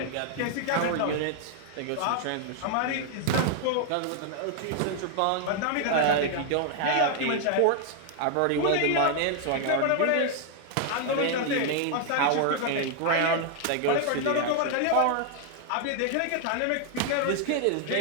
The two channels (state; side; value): different; both; correlation 0.00